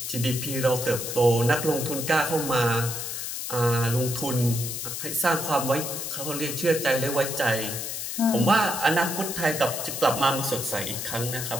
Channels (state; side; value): noise; left; hiss, 5 dB below the sound